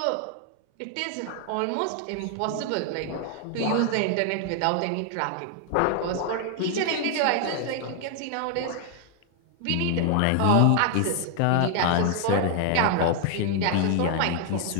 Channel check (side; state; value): both; different; correlation 0.00